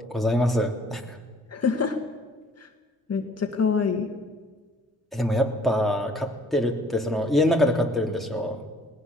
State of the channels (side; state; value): both; normal; correlation 0.57